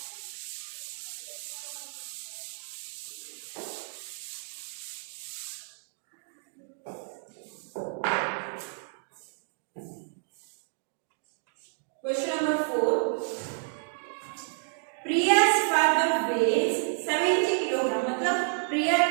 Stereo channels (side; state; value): left; silent; digital silence